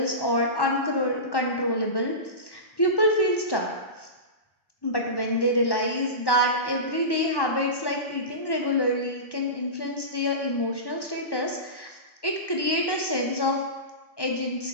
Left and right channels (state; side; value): late; right; 1.1 ms